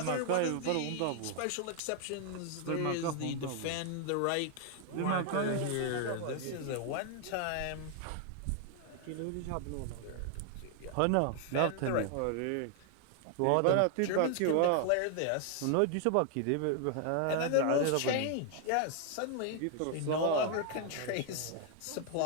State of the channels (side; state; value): both; different; correlation 0.00